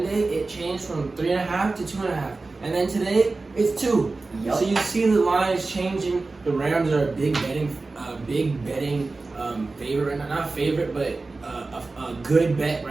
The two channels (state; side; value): quieter; left; 3.6 dB